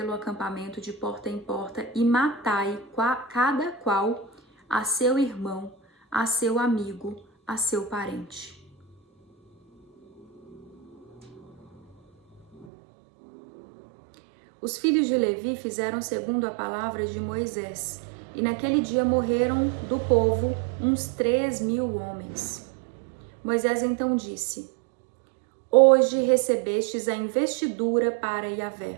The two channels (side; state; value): left; drops out; at 12.7 s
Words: acampamento de porta em porta e matai cada qual a seu irmão, a seu amigo, a seu parente. Os filhos de Levi fizeram segundo a palavra de Moisés, e naquele dia morreram do povo uns 3.000 homens. Moisés então disse: Hoje recebestes a investidura para